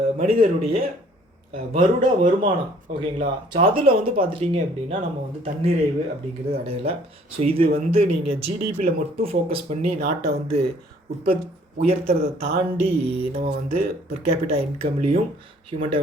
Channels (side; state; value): both; normal; correlation 0.58